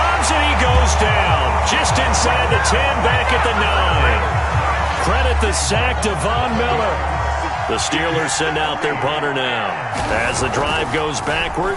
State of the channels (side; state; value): both; identical; correlation 1.00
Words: and he goes down. Just inside the 10, back at the 9. Credit the sack to Von Miller. The Steelers send out their punter now as the drive goes